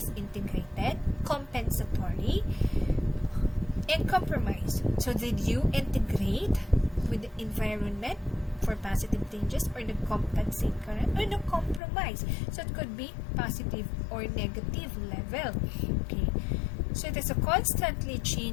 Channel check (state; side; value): drops out; right; at 11.8 s